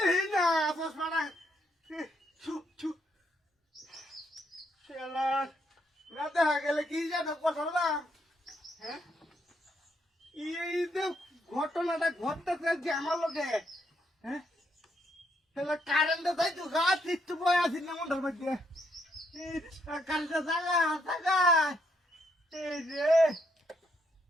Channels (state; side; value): normal; both; correlation 0.74